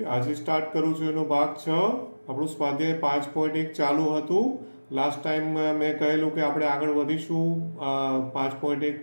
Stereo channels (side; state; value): both; inverted; correlation -1.00